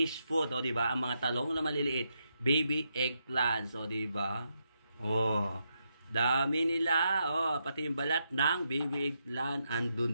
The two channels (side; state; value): both; inverted; correlation -0.82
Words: food. O diba? Ang mga talong na maliliit. Baby eggplants, o diba? O, dami nila. O, pati yung balat ng baby eggplant